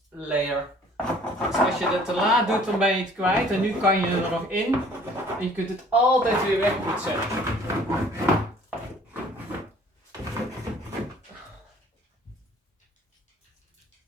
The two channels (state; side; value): normal; both; correlation 0.54